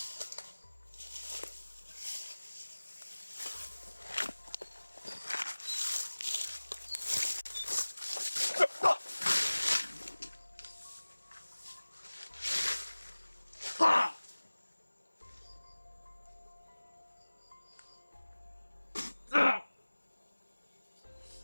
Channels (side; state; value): both; inverted; correlation -1.00